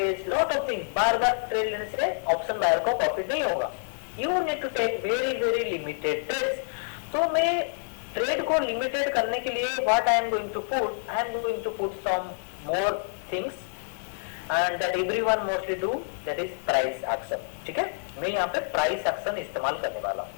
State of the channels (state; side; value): silent; right; digital silence